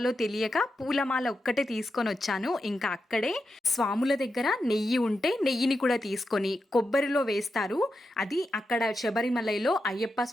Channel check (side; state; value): both; normal; correlation 0.88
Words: తెలియక పూలమాల ఒక్కటే తీసుకొనొచ్చాను. ఇంకా అక్కడే స్వాముల దగ్గర నెయ్యి ఉంటే నెయ్యిని కూడా తీసుకొని కొబ్బరిలో వేస్తారు. అది అక్కడ శబరిమలైలో అయ్యప్ప